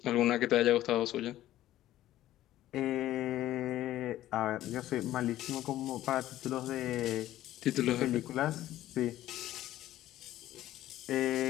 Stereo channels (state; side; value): quieter; right; 14.0 dB